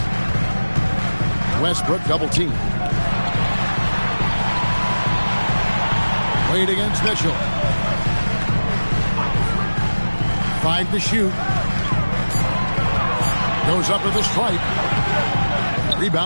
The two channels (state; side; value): inverted; both; correlation -1.00